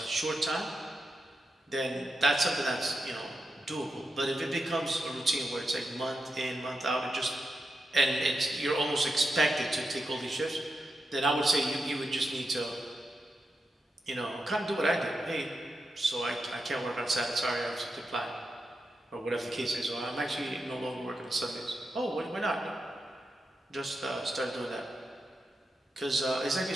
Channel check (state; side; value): normal; both; correlation 0.87